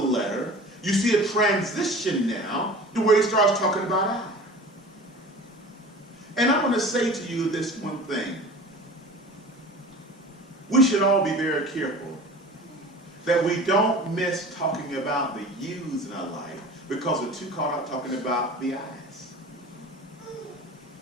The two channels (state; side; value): normal; both; correlation 0.39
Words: you see a transition now to where he starts talking about I. And I want to say to you this one thing. We should all be very careful that we don't miss talking about the yous in our life because we're too caught up talking about the I's.